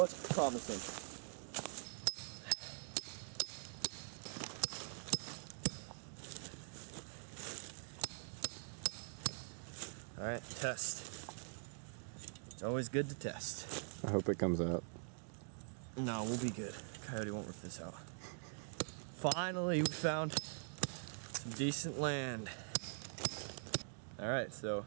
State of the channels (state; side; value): silent; left; digital silence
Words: promising. All right, test. It's always good to test. I hope it comes out. No, we'll be good. Coyote won't rip this out. Finally, we found some decent land. All right, so